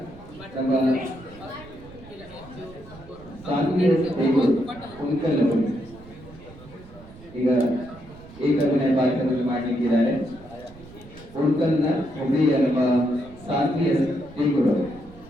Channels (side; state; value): right; noise; rumble, 19 dB below the sound